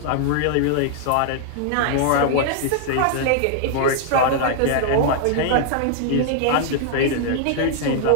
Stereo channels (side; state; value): both; different; correlation -0.01